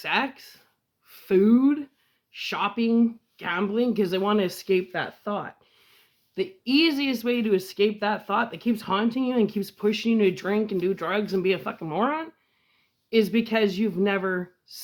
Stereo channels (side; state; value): both; identical; correlation 1.00